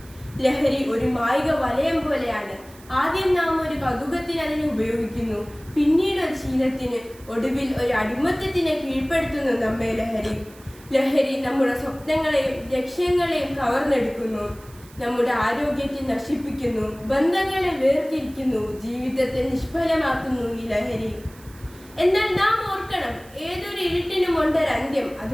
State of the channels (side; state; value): right; noise; hiss, 23 dB below the sound